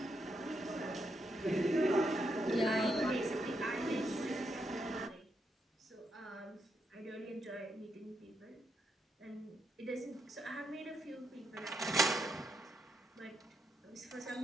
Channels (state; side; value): normal; both; correlation 0.80